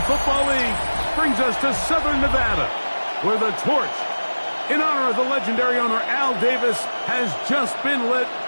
Football League brings us to Southern Nevada, where the torch, in honor of the legendary owner Al Davis, has just been lit,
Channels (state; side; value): inverted; both; correlation -1.00